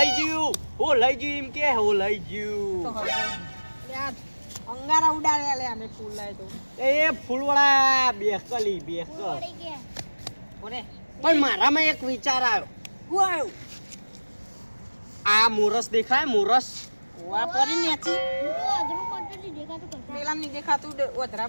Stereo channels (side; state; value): both; inverted; correlation -1.00